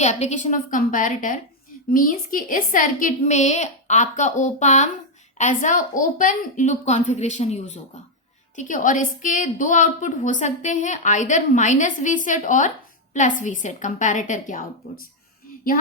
of comparator. Means कि इस सर्किट में आपका opamp as a open loop configuration use होगा, ठीक है। और इसके दो आउटपुट हो सकते हैं, आइदर माइनस वी सेट और प्लस वी सेट कंपैरेटर के आउटपुट्स।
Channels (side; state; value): both; normal; correlation 0.00